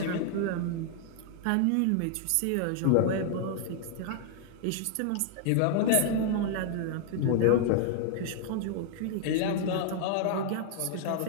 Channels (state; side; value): different; both; correlation 0.00